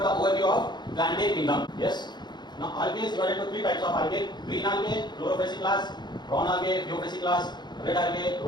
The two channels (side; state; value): right; late; 0.21 ms